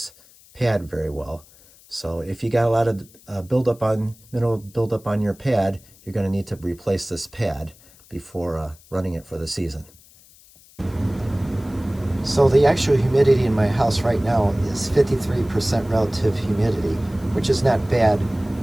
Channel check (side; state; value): left; noise; hiss, 26 dB below the sound